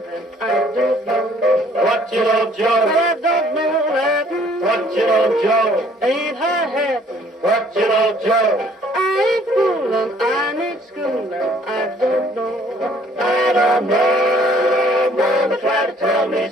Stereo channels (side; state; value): both; normal; correlation 0.59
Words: I don't know. What you know, Joe? I don't know Latin. What you know, Joe? Ain't high-hatting. What you know, Joe? I ain't fooling, I need schooling, I don't know. I don't know. Mama tried to tell me